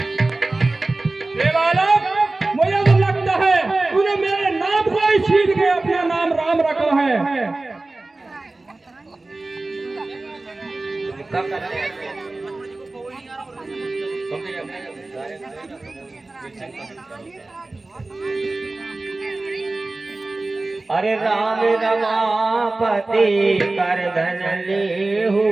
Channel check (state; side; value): quieter; left; 3.1 dB